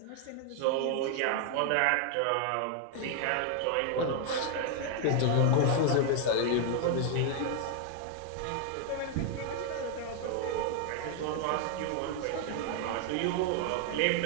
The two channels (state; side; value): different; both; correlation 0.00